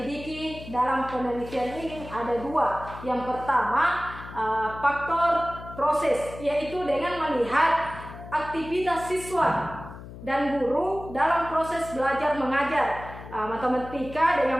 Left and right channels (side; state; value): left; noise; hum, 14 dB below the sound